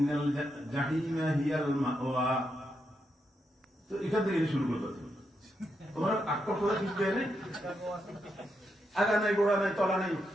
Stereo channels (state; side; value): normal; both; correlation 0.83